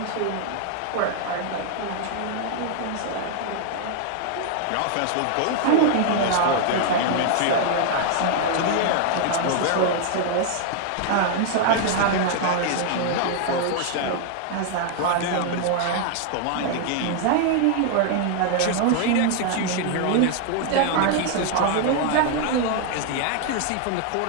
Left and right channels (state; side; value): different; both; correlation 0.00